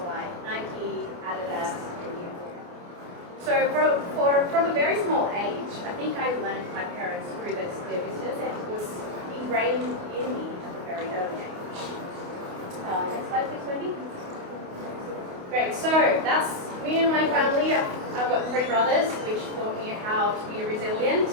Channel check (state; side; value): late; left; 28 ms